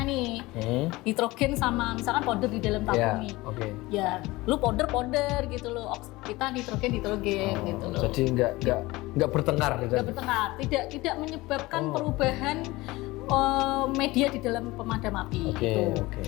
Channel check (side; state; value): right; quieter; 20.5 dB